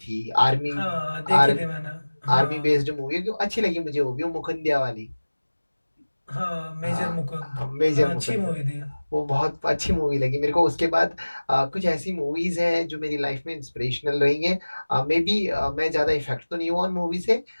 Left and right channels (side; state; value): both; inverted; correlation -1.00